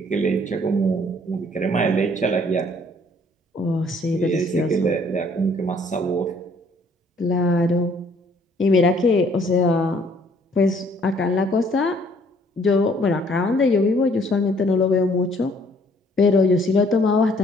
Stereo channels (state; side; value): normal; both; correlation 0.61